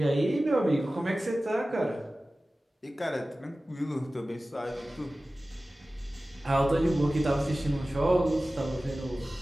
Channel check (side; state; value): both; normal; correlation 0.96